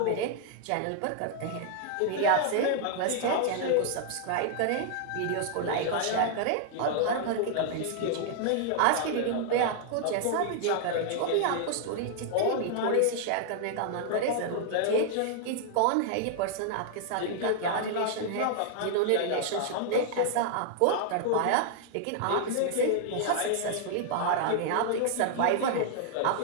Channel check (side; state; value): both; different; correlation -0.01